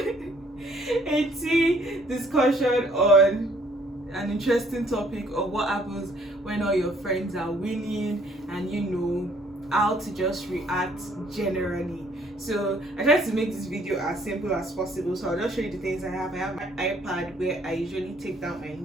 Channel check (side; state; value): both; normal; correlation 0.62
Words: a tea discussion on an interesting topic of what happens when all your friends are winning and you know how to just react generally. So I tried to make this video as simple as possible, so I'll just show you the things I have. I have my iPad where I usually take down my